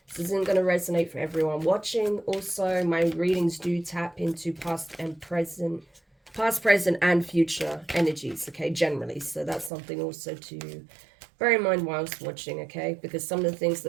This isn't going to resonate for everyone watching. Also, my readings do tap into past, present and future energies, okay, generally. So that's something also to bear in mind whilst watching, okay, because some of the things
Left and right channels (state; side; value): drops out; left; at 9.7 s